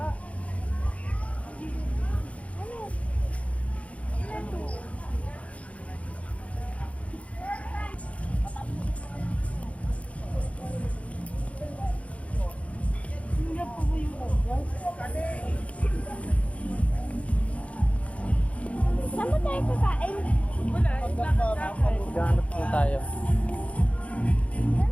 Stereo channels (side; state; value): right; late; 0.064 ms